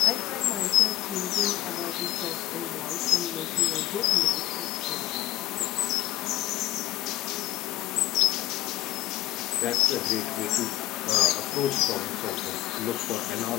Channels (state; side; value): quieter; right; 15.4 dB